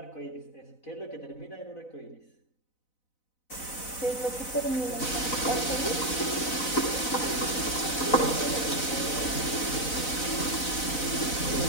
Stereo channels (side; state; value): right; late; 4.0 ms